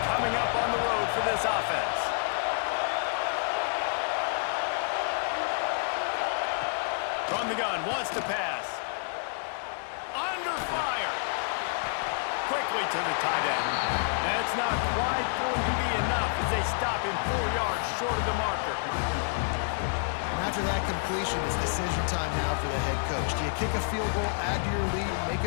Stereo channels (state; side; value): silent; right; digital silence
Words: coming up on the road for this offense. From the gun, wants to pass. Under fire. Quickly to the tight end. That's not quite going to be enough as they stop him 4 yards short of the marker. And after that completion, it's decision time now for the head coach. Do you kick a field goal, add to your lead, and make